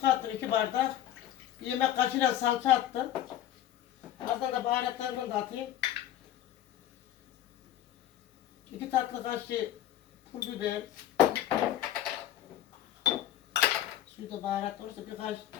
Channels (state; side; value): quieter; right; 12.0 dB